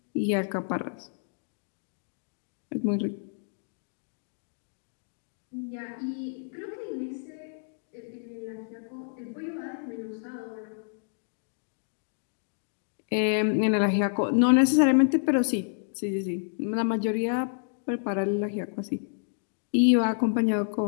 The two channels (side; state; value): right; silent; digital silence